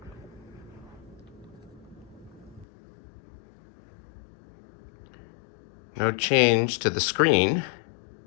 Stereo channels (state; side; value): drops out; right; at 2.7 s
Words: No change to the screen.